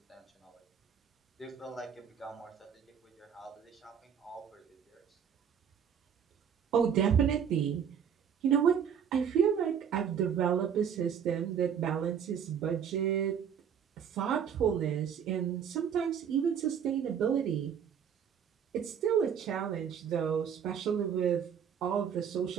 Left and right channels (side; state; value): left; quieter; 7.9 dB